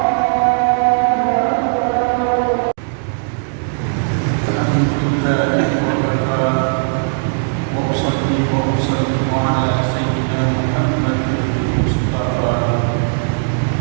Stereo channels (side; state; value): left; silent; digital silence